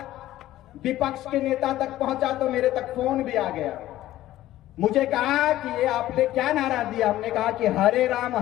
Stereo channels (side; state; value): right; quieter; 14.6 dB